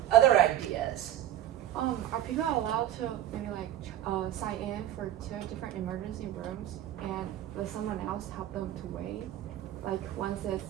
Other ideas? Are people allowed to maybe sign in for 2 different emergency rooms, and let someone else help them to wait? Like once it's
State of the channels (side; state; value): left; quieter; 12.6 dB